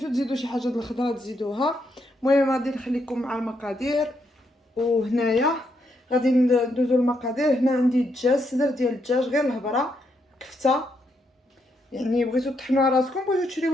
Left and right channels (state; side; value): normal; both; correlation 0.78